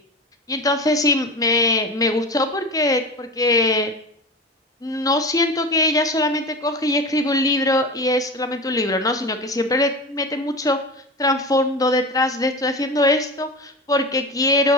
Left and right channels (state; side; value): normal; both; correlation 0.28